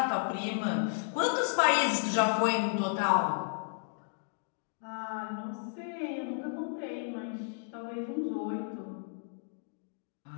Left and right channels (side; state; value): right; silent; digital silence